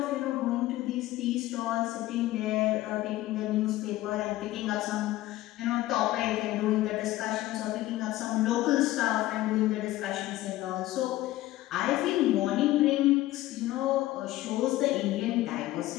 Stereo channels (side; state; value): right; quieter; 16.2 dB